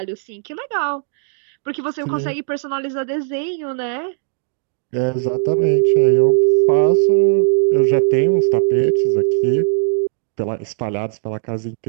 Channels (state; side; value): silent; left; digital silence